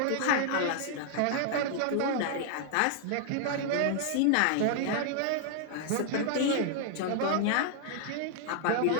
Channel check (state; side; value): different; both; correlation 0.00